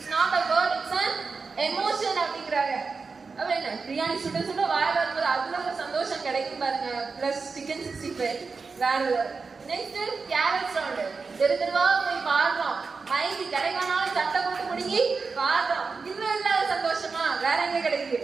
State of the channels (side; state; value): left; quieter; 4.6 dB